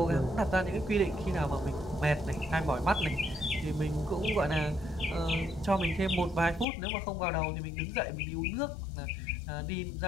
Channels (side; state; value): right; drops out; at 6.7 s